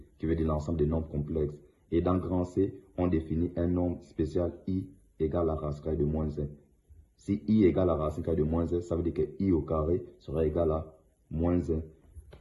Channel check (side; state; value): both; identical; correlation 1.00